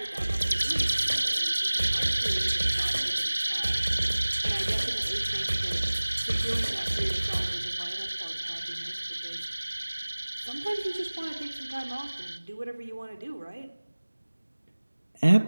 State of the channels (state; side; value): inverted; both; correlation -1.00